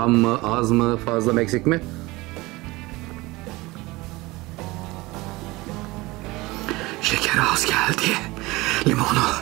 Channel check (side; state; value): left; quieter; 21.3 dB